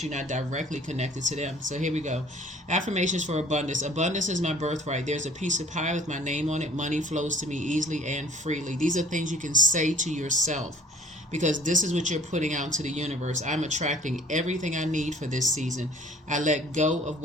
you're not directly connected to them. So here we go. Affirmations for abundance. Abundance is my birthright. There's a piece of pie with my name on it. Money flows to me easily and freely. These are things you can say to yourself, because this is what you're putting out into the universe. I'm attracting everything I need for this season. I let go of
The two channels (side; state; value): both; normal; correlation 0.52